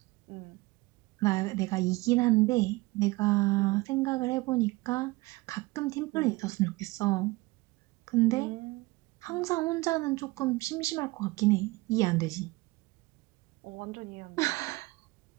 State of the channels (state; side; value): quieter; left; 22.1 dB